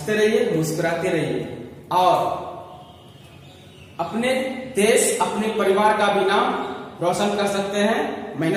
रहिए, मुस्कुराते रहिए, और अपने देश, अपने परिवार का भी नाम रोशन कर सकते हैं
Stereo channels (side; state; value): both; identical; correlation 1.00